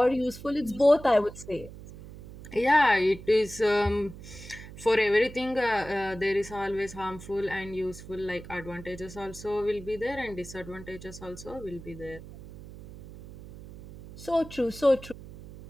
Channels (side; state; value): right; noise; hum, 15 dB below the sound